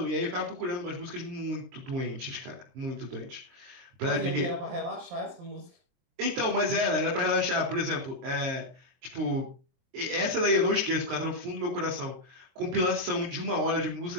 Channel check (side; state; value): left; late; 23 ms